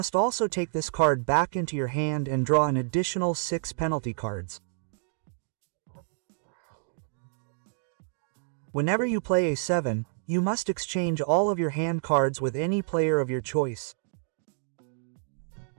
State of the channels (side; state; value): left; silent; digital silence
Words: also take this card back into your hand and draw an additional 6 penalty cards. Whenever you play a 7, you must exchange all of your hand cards with any player of your choice.